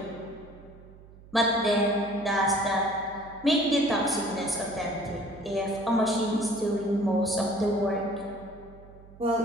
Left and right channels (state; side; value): noise; right; hum, 21 dB below the sound